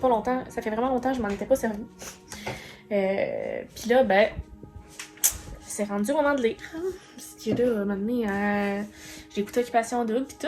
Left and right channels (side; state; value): both; identical; correlation 1.00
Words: longtemps. Ça fait vraiment longtemps que je m'en étais pas servi. Puis là, ben, c'est rendu au moment de lire. Parce que là, à un moment donné, j'ai écouté Occupation Double pis tout.